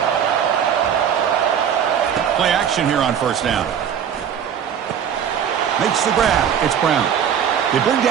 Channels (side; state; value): left; quieter; 8.5 dB